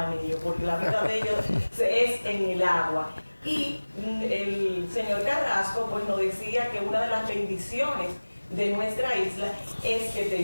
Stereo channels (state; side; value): inverted; both; correlation -1.00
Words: ellos, porque la vida de ellos es en el agua. Y el señor Carrasco pues nos decía que una de las bendiciones de nuestra isla es que